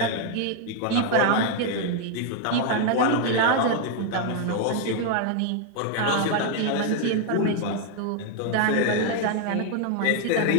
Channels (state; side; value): different; both; correlation 0.00